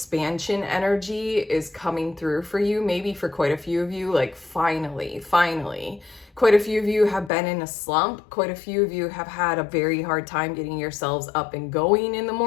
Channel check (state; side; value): drops out; right; at 7.3 s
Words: energy is coming through for you. Maybe for quite a few of you, like finally. Quite a few of you have been in a slump. Quite a few of you have had a very hard time getting yourselves up and going in the